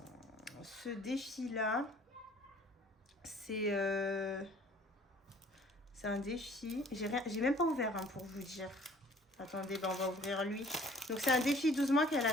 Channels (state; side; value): normal; both; correlation 0.54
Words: ce défi-là. C'est un défi. J'ai même pas ouvert hein, pour vous dire. Attendez, on va ouvrir lui. Donc, c'est un défi 12 mois qu'elle a